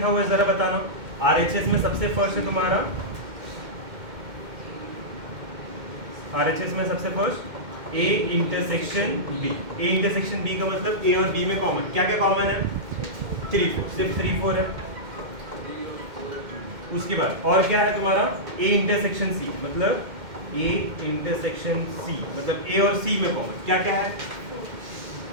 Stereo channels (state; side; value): late; left; 2.1 ms